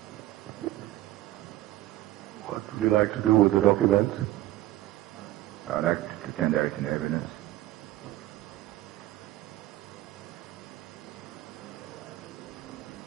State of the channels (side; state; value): left; quieter; 16.0 dB